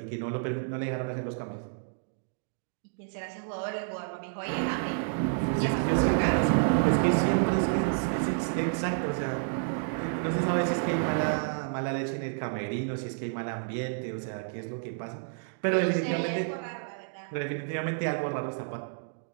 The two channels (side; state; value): left; silent; digital silence